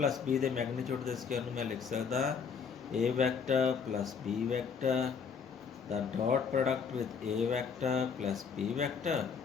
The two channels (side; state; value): right; quieter; 6.2 dB